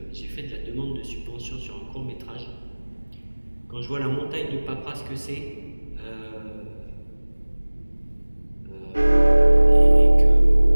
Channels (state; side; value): inverted; both; correlation -1.00